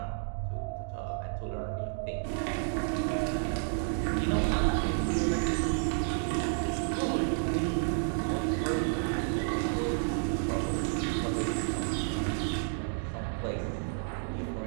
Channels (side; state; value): left; silent; digital silence